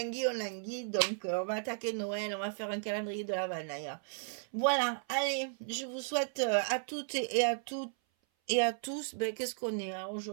Donc on va attaquer Noël. On va faire un calendrier de l'Avent d'ailleurs. Voilà. Allez, je vous souhaite à toutes et à toutes et à tous, ben, qu'est-ce qu'on est hein?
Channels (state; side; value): silent; left; 55 dB below the other